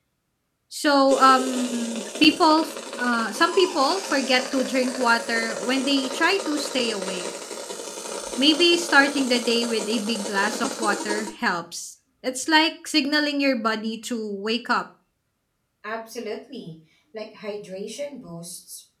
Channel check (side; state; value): both; identical; correlation 1.00